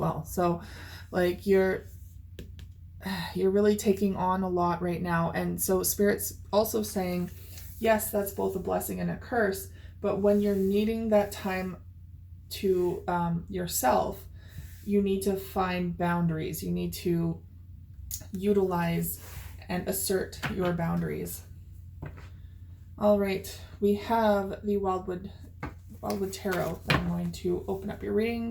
So like you're really taking on a lot right now. And so Spirit's also saying, yes, that's both a blessing and a curse, but when you're needing that time to yourself, you need to find boundaries. You need to utilize and assert your boundaries. All right, we have the Wildwood Tarot that I'm going to open up your reading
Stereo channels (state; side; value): identical; both; correlation 1.00